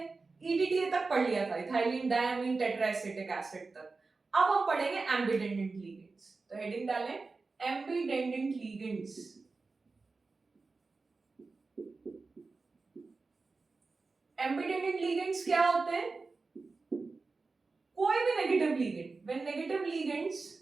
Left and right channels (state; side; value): quieter; left; 4.0 dB